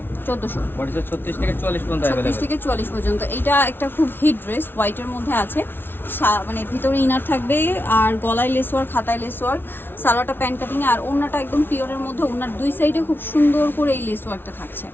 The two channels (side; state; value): right; late; 0.10 ms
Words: 1400। বডি সাইজ 36 থেকে 40 পর্যন্ত अवेलेबल। 36 থেকে 40 পর্যন্ত। এটা একটা খুব হিট ড্রেস, হোয়াইটের মধ্যে আছে, মানে ভিতরে ইনার থাকবে আর গলায় লেস ওয়ার্ক, হাতায় লেস ওয়ার্ক, সালোয়ারটা প্যান্ট কাটিং আর ওড়নাটা একদম পিওরের মধ্যে। ওড়নার দুই সাইডে খুব সুন্দর করে এই লেস ওয়ার্কটা থাকছে,